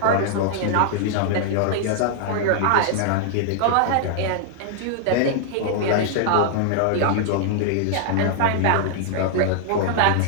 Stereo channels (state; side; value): different; both; correlation -0.01